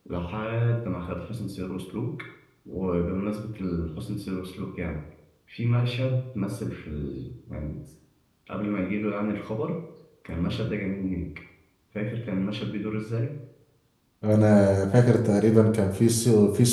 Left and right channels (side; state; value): both; identical; correlation 1.00